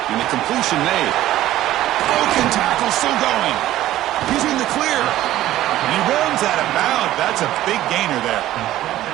And the completion made. Broken tackle still going. He's in the clear. And he runs out of bounds. That's a big gainer there.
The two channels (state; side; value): quieter; left; 14.3 dB